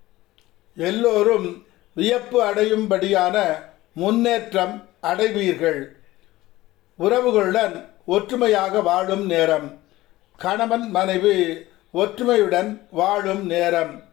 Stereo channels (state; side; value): quieter; right; 17.3 dB